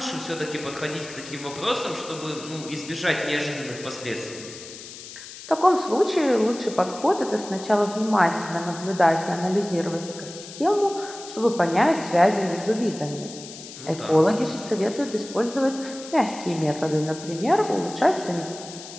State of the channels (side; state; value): left; noise; hiss, 14 dB below the sound